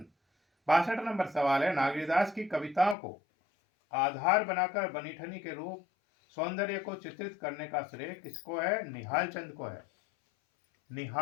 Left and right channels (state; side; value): drops out; right; at 3.0 s